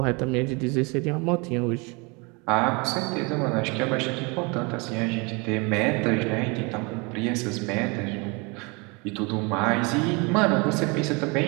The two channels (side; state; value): left; quieter; 29.2 dB